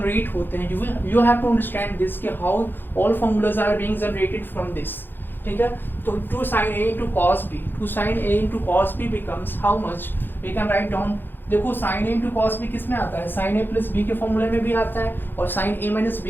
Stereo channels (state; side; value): late; right; 0.097 ms